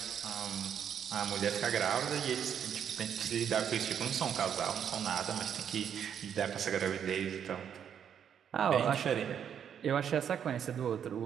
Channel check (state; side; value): quieter; left; 8.5 dB